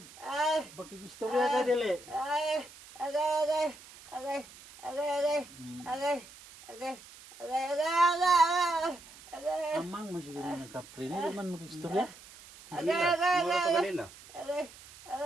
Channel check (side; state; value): right; noise; hiss, 20 dB below the sound